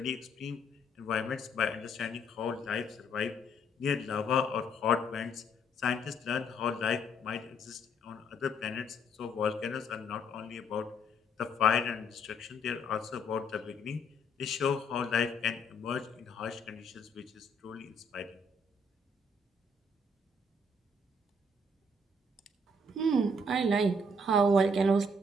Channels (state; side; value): normal; both; correlation 0.67